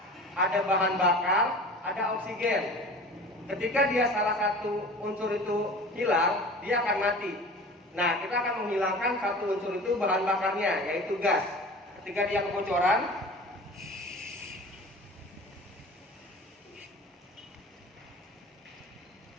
ada bahan bakar, ada oksigen. Ketika dia salah satu unsur itu hilang, dia akan mati. Nah, kita akan menghilangkan satu unsur itu bahan bakarnya, yaitu gas. Ketika dia kebocoran,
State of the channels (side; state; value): both; normal; correlation 0.39